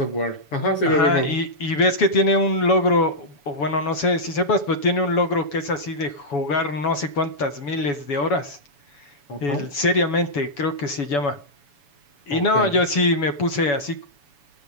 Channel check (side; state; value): right; late; 7.0 ms